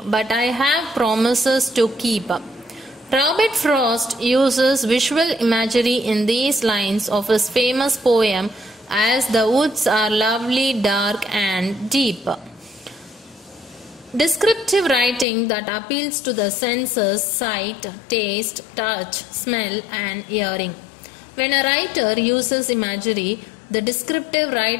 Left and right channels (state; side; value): drops out; right; at 15.2 s